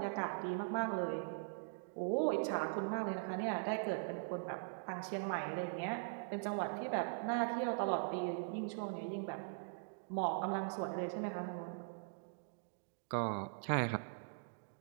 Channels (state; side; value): silent; left; digital silence